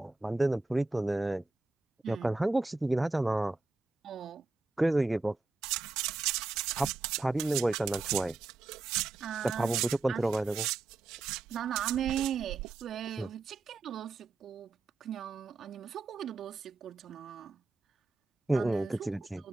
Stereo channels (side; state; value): left; quieter; 3.5 dB